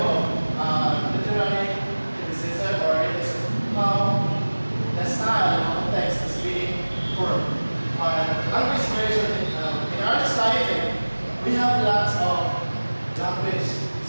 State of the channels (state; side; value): inverted; both; correlation -1.00